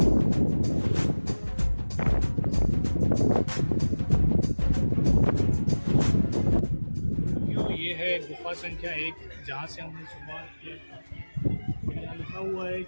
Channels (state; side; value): inverted; both; correlation -1.00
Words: ये है गुफा संख्या 1 जहाँ से हमने शुरुआत किया था। यहाँ लिखा हुआ है